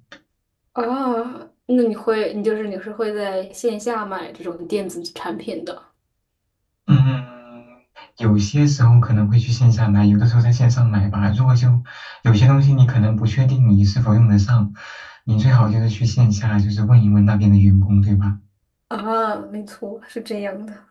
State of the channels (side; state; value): both; identical; correlation 1.00